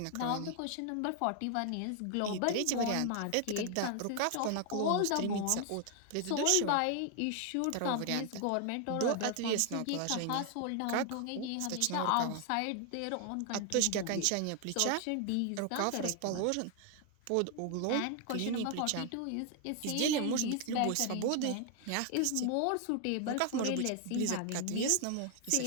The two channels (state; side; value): different; both; correlation 0.00